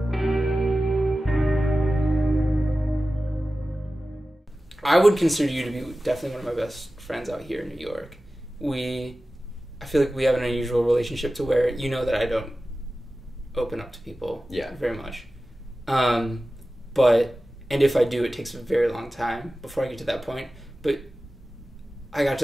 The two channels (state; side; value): normal; both; correlation 0.95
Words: I would consider you to be definitely one of my best friends out here in New York. I feel like we have an unusual relationship to where you know that I don't open up to people very much. And if I do, it takes a very long time before I get to that point. But I got